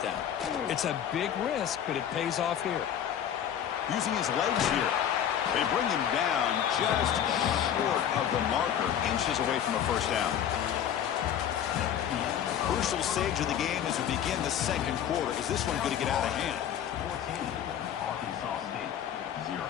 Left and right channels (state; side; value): quieter; right; 9.6 dB